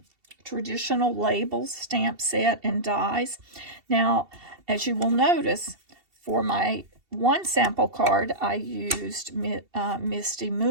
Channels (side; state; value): left; late; 2.7 ms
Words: traditional labels, stamp set, and dies. Now, as you will notice, for my one sample card, I used Misty